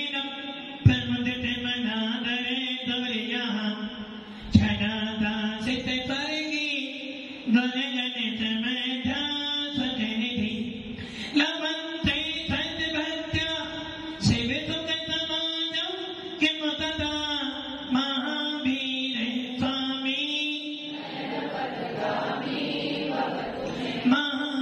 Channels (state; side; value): identical; both; correlation 1.00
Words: प्रमुदिते मनादरे दौर्यः छदाता सिद्धे स्वर्गी गणगणित मेधा सजनिधि लवन्ते सद्भक्त्या सेवितुकतमानं किं तदा महावीर स्वामी